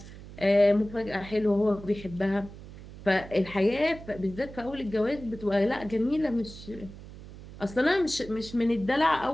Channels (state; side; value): noise; right; hum, 16 dB below the sound